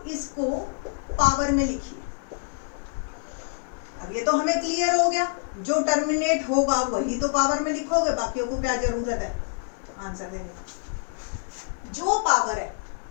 इसको पावर में लिखिए। अब ये तो हमें क्लियर हो गया, जो टर्मिनेट होगा वही तो पावर में लिखोगे, बाकियों को क्या जरूरत है आंसर देने की। जो पावर है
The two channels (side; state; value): right; silent; 57 dB below the other